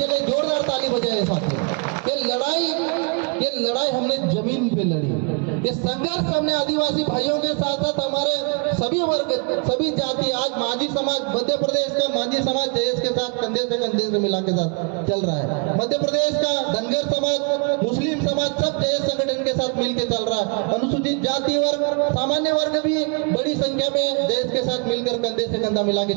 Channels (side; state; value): left; quieter; 36.2 dB